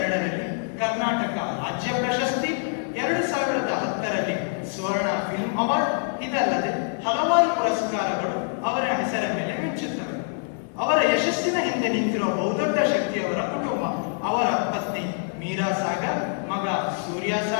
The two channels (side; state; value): right; silent; 62 dB below the other